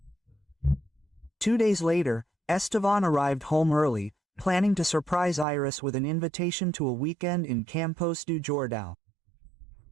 2 days later, Estevan arrived home early, planning to surprise Iris with an invitation to a weekend in Campos do Jordão.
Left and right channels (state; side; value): drops out; left; at 5.5 s